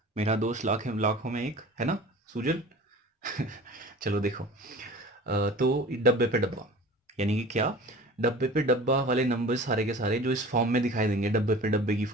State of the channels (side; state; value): both; normal; correlation 0.40